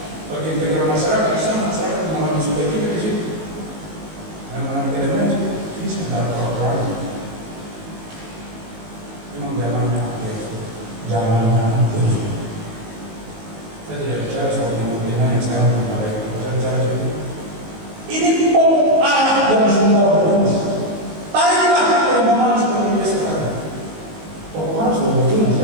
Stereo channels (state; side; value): late; left; 19 ms